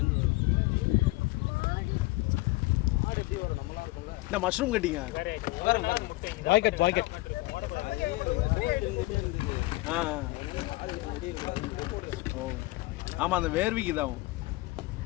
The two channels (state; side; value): quieter; right; 21.1 dB